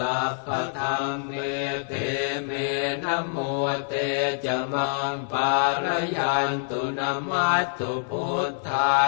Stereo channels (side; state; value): right; silent; digital silence